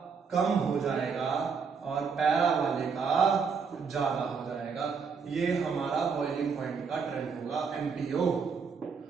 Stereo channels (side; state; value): left; quieter; 5.7 dB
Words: कम हो जाएगा और पैरा वाले का ज्यादा हो जाएगा। ये हमारा बॉइलिंग पॉइंट का ट्रेंड होगा MPO,